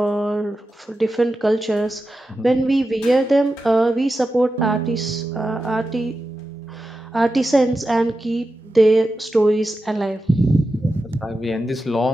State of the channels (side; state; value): both; normal; correlation 0.91